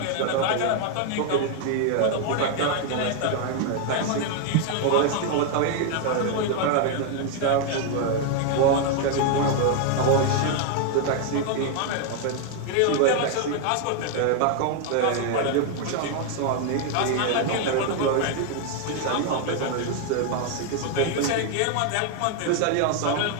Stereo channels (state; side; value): different; both; correlation 0.00